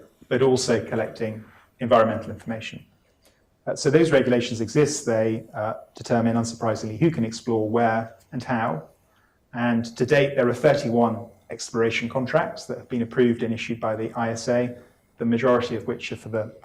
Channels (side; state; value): both; identical; correlation 1.00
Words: but also collecting environmental information. So those regulations exist. They determine, unsurprisingly, who can explore, where and how. And to date, there are 31 exploration contracts that have been approved and issued by the ISA, the majority of which are for the